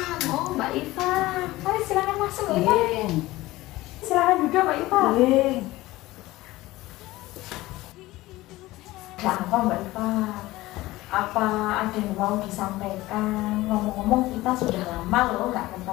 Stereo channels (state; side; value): quieter; right; 18.2 dB